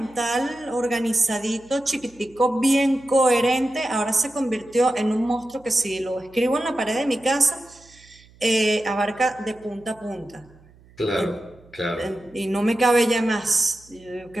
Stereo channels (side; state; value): right; noise; hum, 27 dB below the sound